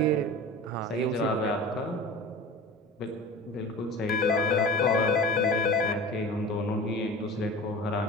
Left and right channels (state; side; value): normal; both; correlation 0.36